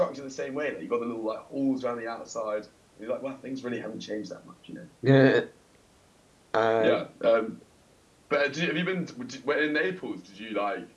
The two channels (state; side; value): identical; both; correlation 1.00